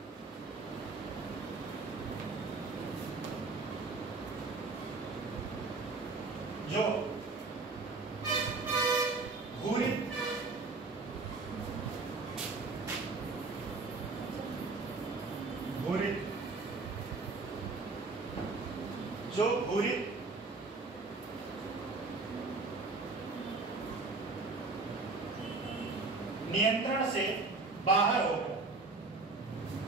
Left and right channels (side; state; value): left; quieter; 3.8 dB